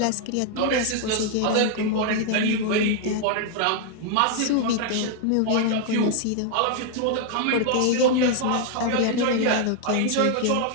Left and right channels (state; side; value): different; both; correlation 0.00